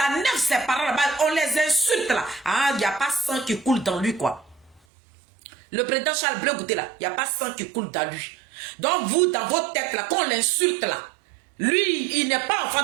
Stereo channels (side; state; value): left; drops out; at 4.8 s